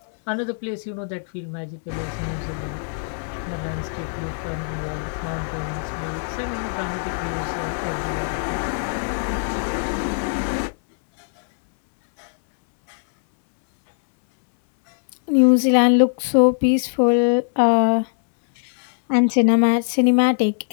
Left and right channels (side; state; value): right; silent; 64 dB below the other